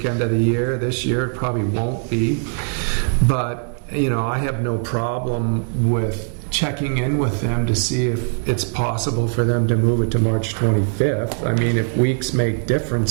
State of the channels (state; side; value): silent; left; 57 dB below the other